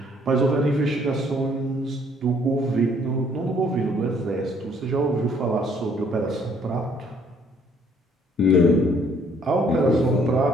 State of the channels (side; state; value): both; normal; correlation 0.63